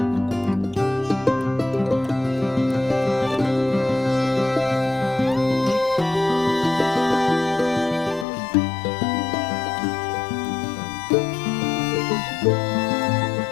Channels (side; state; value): right; drops out; at 8.2 s